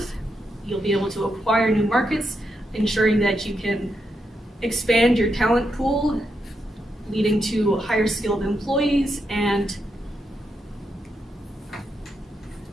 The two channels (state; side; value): normal; both; correlation 0.83